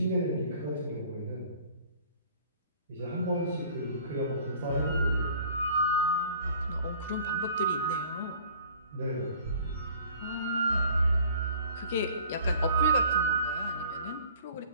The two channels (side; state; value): both; inverted; correlation -0.51